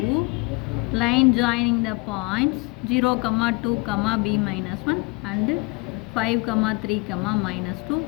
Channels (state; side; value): quieter; right; 25.8 dB